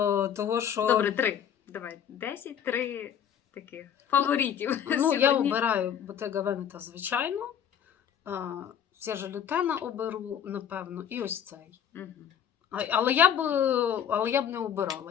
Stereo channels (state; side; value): quieter; right; 8.7 dB